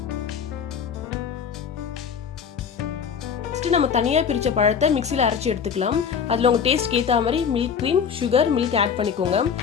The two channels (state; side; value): quieter; right; 7.0 dB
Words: நெக்ஸ்ட் நம்ம தனியாக பிரித்த பழத்தை மிக்சியில் அரைச்சி எடுத்துக்கலாம். அதில் உங்கள் டேஸ்ட்க்கு ஏற்ற மாதிரி milk cream, sugar, milk add பண்ணிக்கோங்க.